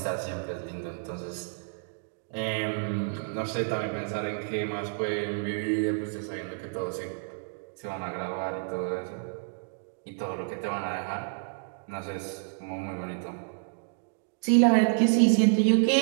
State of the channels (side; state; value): left; silent; digital silence